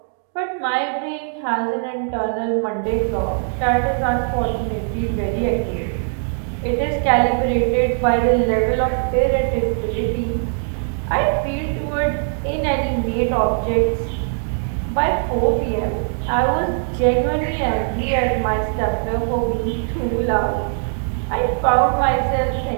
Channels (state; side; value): silent; left; 65 dB below the other